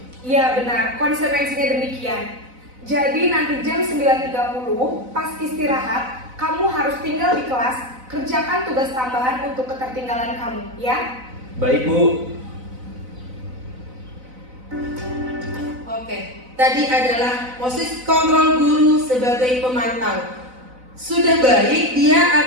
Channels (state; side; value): late; left; 4.0 ms